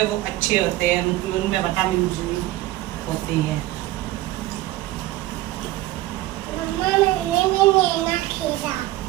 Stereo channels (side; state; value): left; quieter; 16.6 dB